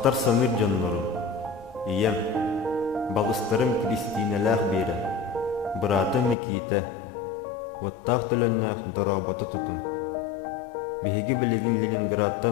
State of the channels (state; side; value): drops out; right; at 6.4 s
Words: саныр жоннору. Ием, балыстарым Кристиналах бері. Бұратым Микита. Оттақ төлөннәк дороботы тұтын. Беги білігін